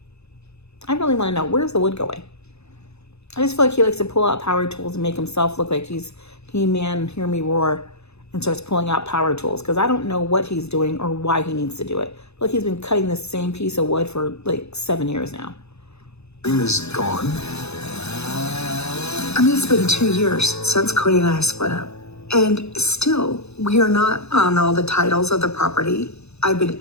I really want to know, where's the wood going? I just feel like he likes to pull out power tools and make himself look like he's He-Man, hear me roar, and starts pulling out power tools, because I don't know what he's doing or why he needs to do it. Like, he's been cutting the same piece of wood for like 7 years now. Dream is gone. I mean, it's been 2 years since Cody and I split up. And still, we are not on all the titles of the property. I've been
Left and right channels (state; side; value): late; right; 0.80 ms